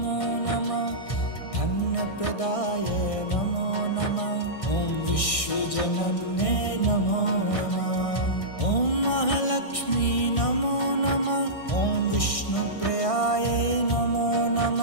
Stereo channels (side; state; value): right; late; 1.6 ms